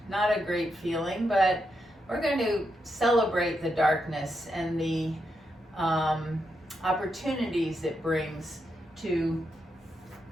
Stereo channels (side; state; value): both; normal; correlation 0.83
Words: not a great feeling, but we're going to celebrate the darkness and the opportunities it brings to